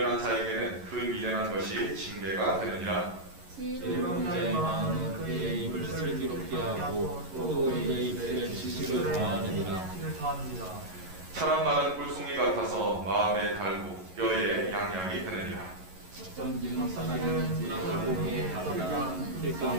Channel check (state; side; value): late; left; 11 ms